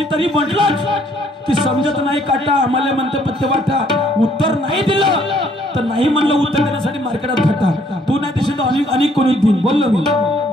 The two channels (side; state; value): both; normal; correlation 0.64